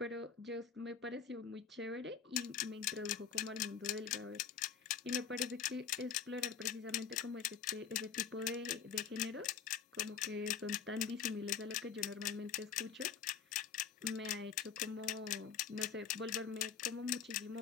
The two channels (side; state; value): right; quieter; 7.1 dB